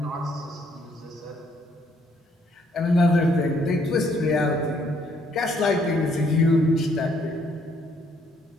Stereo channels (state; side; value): normal; both; correlation 0.68